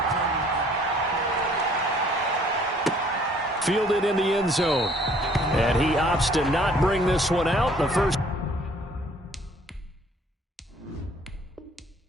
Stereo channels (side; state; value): both; normal; correlation 0.58